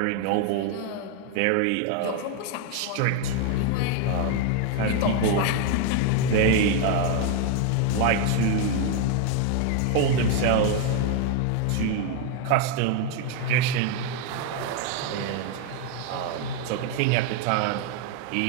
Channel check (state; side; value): different; both; correlation 0.01